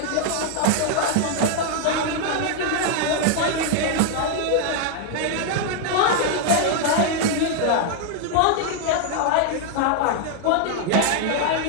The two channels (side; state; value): both; different; correlation 0.00